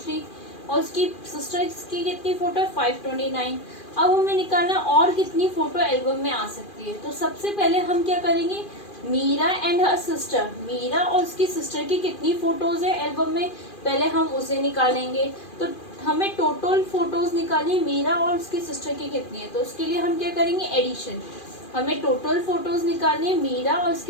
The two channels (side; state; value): right; late; 2.4 ms